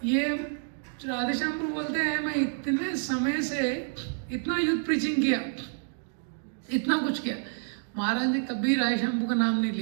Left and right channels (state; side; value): silent; left; digital silence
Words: ये राधेश्याम प्रभु बोलते हैं मैं इतने समय से इतना यूथ प्रीचिंग किया, इतना कुछ किया, महाराज ने कभी राय शंभू का नाम नहीं